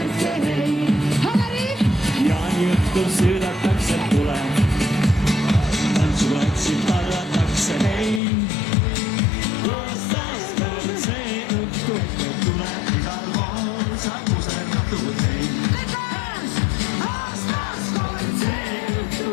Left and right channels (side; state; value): right; drops out; at 8.2 s